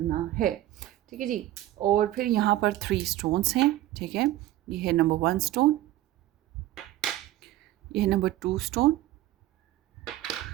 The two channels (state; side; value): quieter; left; 14.8 dB